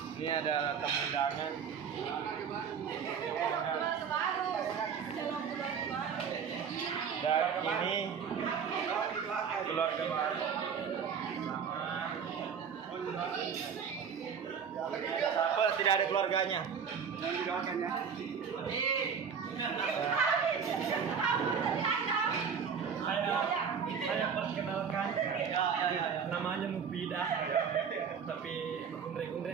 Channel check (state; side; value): quieter; left; 6.8 dB